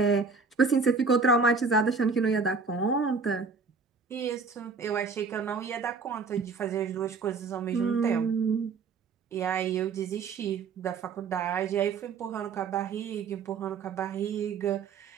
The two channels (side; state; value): left; quieter; 4.8 dB